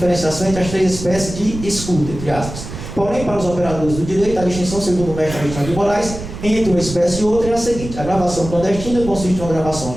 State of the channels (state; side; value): noise; right; rumble, 10 dB below the sound